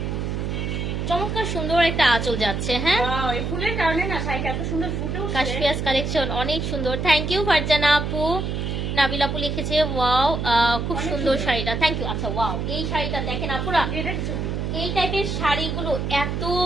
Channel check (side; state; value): right; noise; hum, 2 dB below the sound